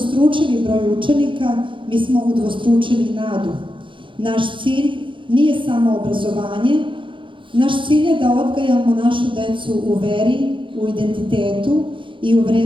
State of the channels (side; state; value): left; late; 0.24 ms